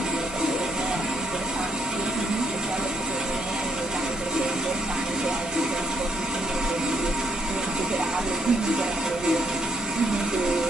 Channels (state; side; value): normal; both; correlation 0.71